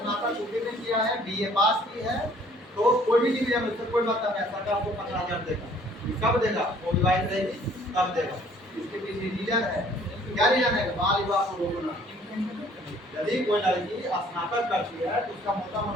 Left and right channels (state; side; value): normal; both; correlation 0.58